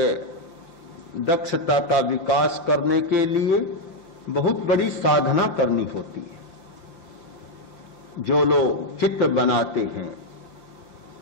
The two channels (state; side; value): late; right; 5.8 ms